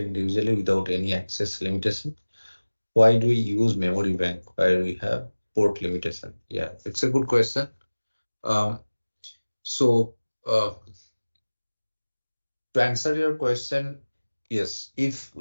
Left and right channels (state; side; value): inverted; both; correlation -1.00